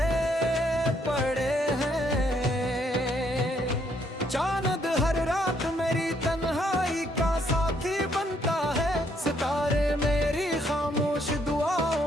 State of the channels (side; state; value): both; normal; correlation 0.70